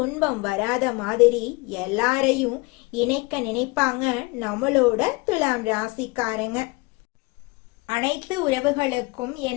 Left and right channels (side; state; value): right; quieter; 25.3 dB